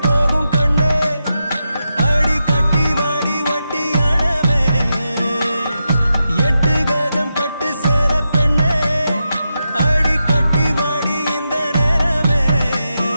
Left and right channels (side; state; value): both; inverted; correlation -0.87